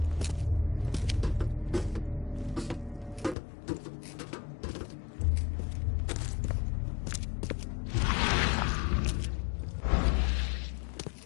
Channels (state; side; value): drops out; right; at 3.4 s